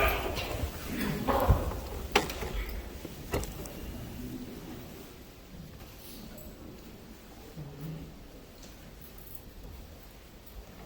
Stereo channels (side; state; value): both; identical; correlation 1.00